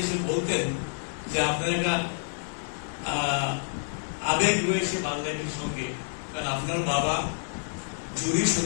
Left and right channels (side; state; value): right; silent; digital silence